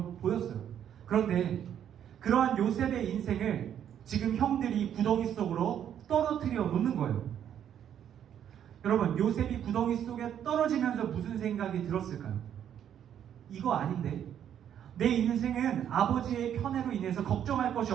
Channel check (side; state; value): left; quieter; 9.6 dB